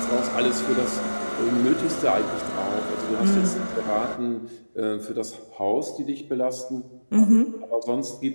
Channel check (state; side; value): inverted; both; correlation -1.00